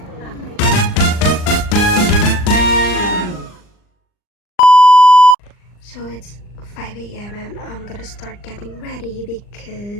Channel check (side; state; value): right; late; 39 ms